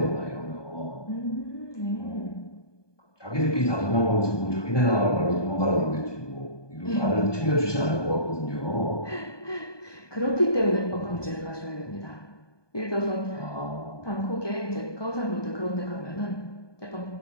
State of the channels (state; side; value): late; right; 1.2 ms